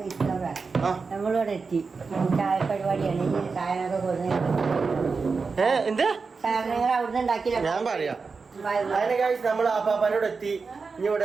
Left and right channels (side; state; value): left; quieter; 4.7 dB